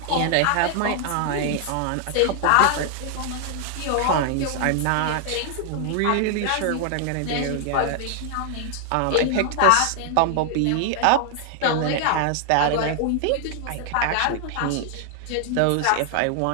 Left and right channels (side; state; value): both; different; correlation 0.00